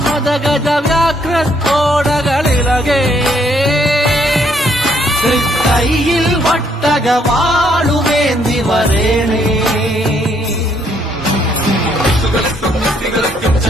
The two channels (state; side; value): normal; both; correlation 0.69